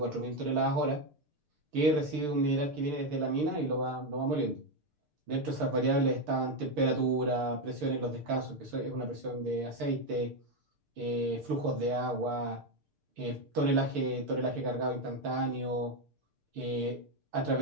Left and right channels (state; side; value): late; left; 6.7 ms